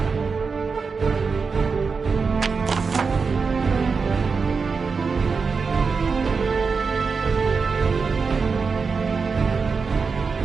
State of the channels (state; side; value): quieter; left; 5.0 dB